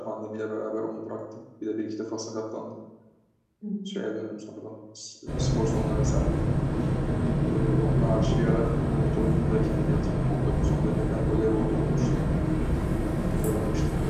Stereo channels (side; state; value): both; identical; correlation 1.00